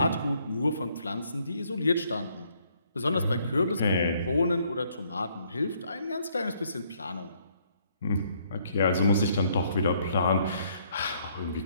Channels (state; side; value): inverted; both; correlation -0.68